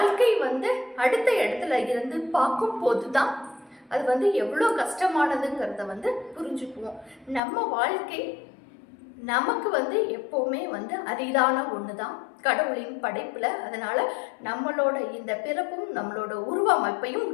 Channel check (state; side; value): drops out; right; at 7.4 s